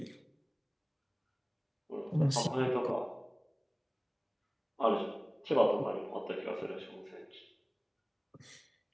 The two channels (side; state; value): both; identical; correlation 1.00